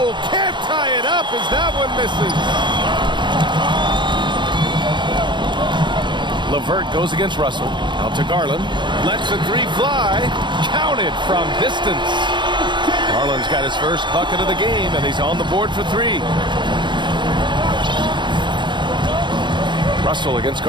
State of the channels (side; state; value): left; late; 0.23 ms